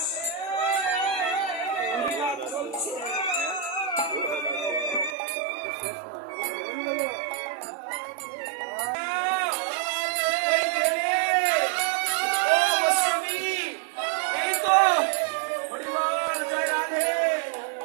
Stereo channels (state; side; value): drops out; left; at 5.2 s